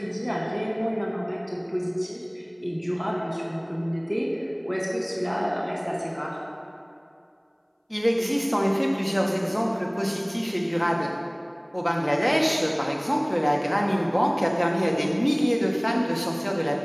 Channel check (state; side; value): identical; both; correlation 1.00